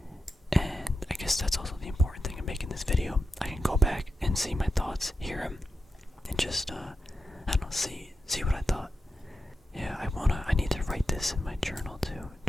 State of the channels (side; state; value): both; normal; correlation 0.89